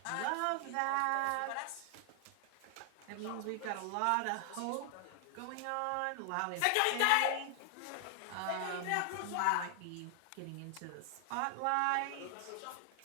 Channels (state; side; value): different; both; correlation 0.00